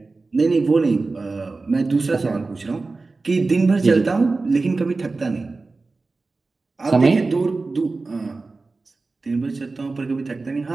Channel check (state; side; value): quieter; left; 3.7 dB